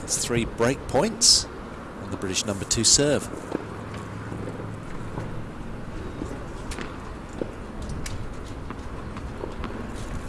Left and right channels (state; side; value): identical; both; correlation 1.00